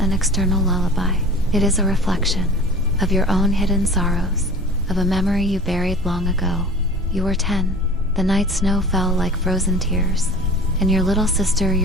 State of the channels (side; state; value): both; normal; correlation 0.41